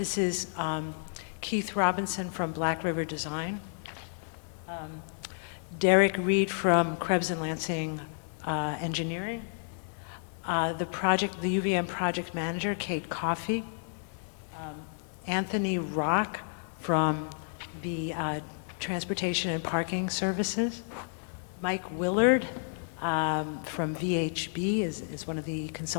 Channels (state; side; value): silent; right; digital silence